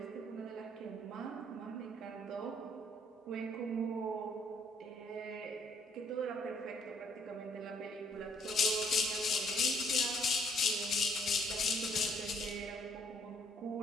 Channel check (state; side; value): normal; both; correlation 0.66